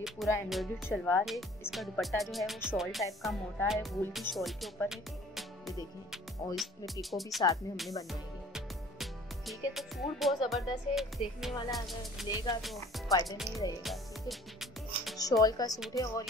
पूरा एम्ब्रॉयडर्ड शलवार है। इसका दुपट्टा जो है वो शॉल टाइप का मोटा है, वूल की शॉल के ऊपर है, ये देखें। और इसमें पिको भी साथ में हमने बनवाई है, ठीक है। तो सूट बहुत ज़बरदस्त है, देखने वाला अगर लेगा तो फ़ायदे में ही रहेगा, ठीक है। शॉल का सूट है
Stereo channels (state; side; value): normal; both; correlation 0.51